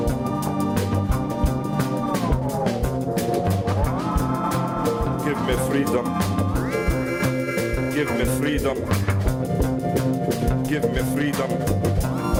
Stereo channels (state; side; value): identical; both; correlation 1.00